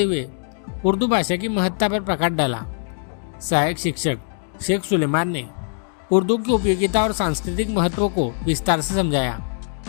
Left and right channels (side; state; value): right; silent; 61 dB below the other